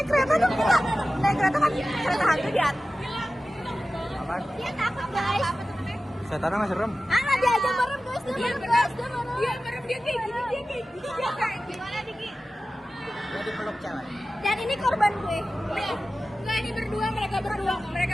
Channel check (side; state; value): both; normal; correlation 0.95